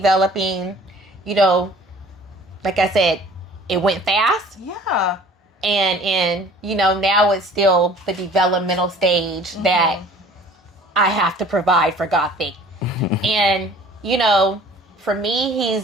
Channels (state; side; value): normal; both; correlation 0.50